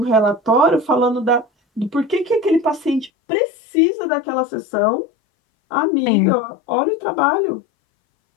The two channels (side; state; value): right; drops out; at 3.1 s